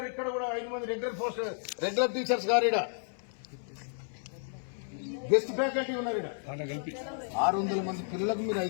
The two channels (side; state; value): right; silent; 56 dB below the other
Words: ఇక్కడ కూడా 5 మంది రెగ్యులర్ టీచర్స్ గారు. ఇక్కడ గెస్ట్ ఫ్యాకల్టీ ఉన్నారు. ఇక్కడ 600 మంది పిల్లలకు మీరు